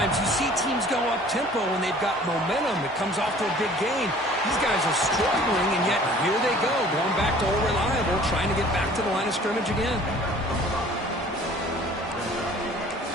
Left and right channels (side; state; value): both; normal; correlation 0.50